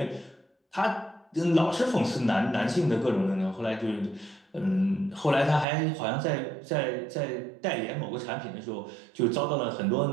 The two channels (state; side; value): drops out; left; at 5.7 s